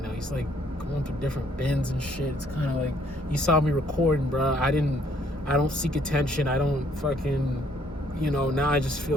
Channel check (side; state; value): both; normal; correlation 0.65